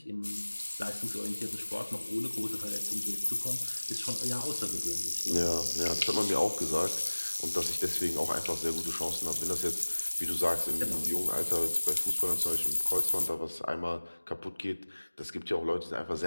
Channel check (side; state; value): both; inverted; correlation -1.00